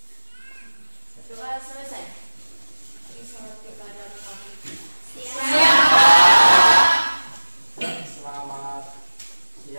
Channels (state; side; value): inverted; both; correlation -1.00